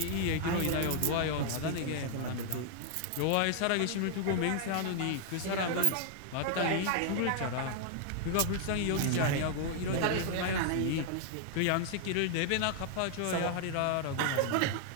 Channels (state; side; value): different; both; correlation 0.00